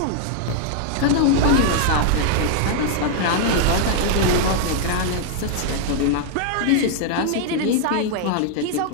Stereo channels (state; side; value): different; both; correlation 0.00